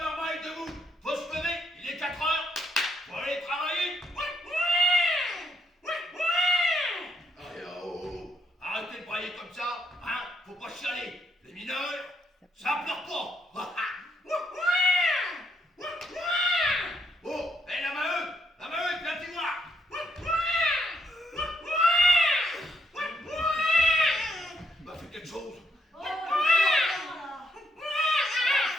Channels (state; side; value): normal; both; correlation 0.75